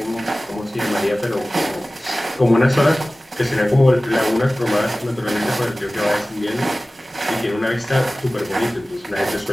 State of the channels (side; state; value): both; normal; correlation 0.97